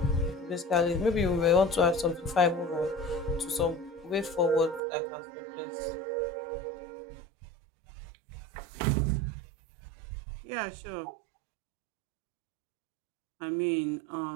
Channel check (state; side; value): drops out; left; at 4.8 s